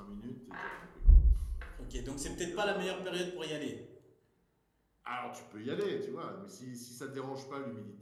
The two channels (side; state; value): both; identical; correlation 1.00